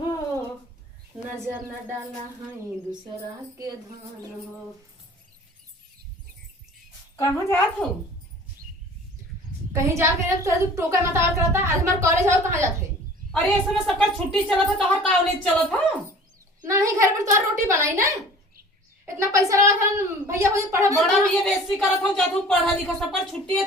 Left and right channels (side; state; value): both; normal; correlation 0.45